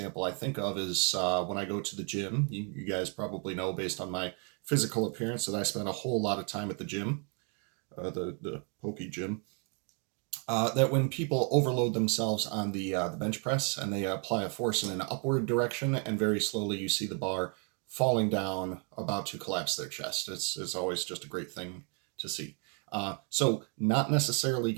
I think of is when I go to the gym. You guys probably know, based on my physical appearance, that I spend a whole lot of time at the gym, the pokey gym. That when people overload themselves on the bench press and they apply a force in an upward direction, and very slowly you see the bar falling down, about to collapse their chest. It's always just a great thing to see. So not necessarily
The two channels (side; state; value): left; quieter; 38.5 dB